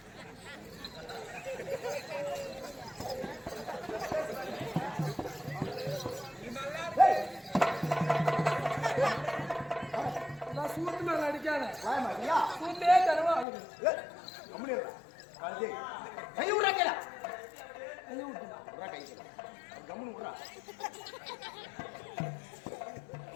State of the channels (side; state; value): right; drops out; at 13.5 s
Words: சூட்டு மேல அடிக்காத சூட்டே தரவா கை விடுறா கேளா கை விட்டுறா கை கம்முன்னு விடுறா.